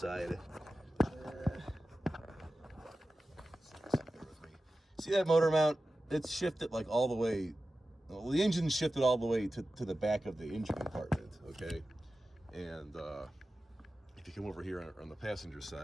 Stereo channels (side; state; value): both; normal; correlation 0.94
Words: See that motor mount? It's shifted like all the way. Well, the engine's shifted all the way to the back of the engine compartment. Okay. And if you come over here on the passenger